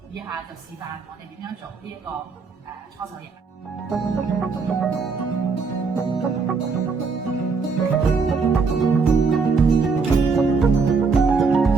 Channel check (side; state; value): left; quieter; 4.8 dB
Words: 以下就示範我哋點樣做呢一個搓手液。